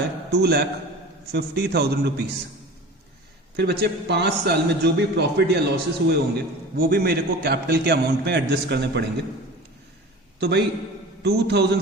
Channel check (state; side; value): normal; both; correlation 0.37